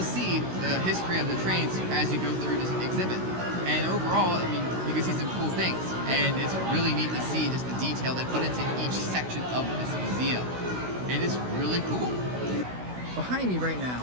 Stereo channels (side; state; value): left; late; 16 ms